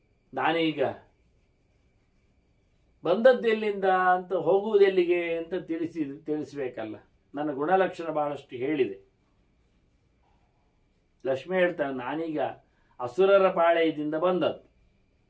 ನಾನೀಗ ಬಂದದ್ದೆಲ್ಲಿಂದ ಅಂತ, ಹೋಗುವುದೆಲ್ಲಿಗೆ ಅಂತ ತಿಳಿಸಬೇಕಲ್ಲ. ನನ್ನ ಗುಣಲಕ್ಷಣ ಬಹಳಷ್ಟು ಹೇಳಿದೆ. ಲಕ್ಷ್ಮಿ ಹೇಳ್ತಾನೆ, ನಾನೀಗ ಅಸುರರ ಪಾಳೆಯದಿಂದ ಬಂದದ್ದು.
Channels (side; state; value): both; identical; correlation 1.00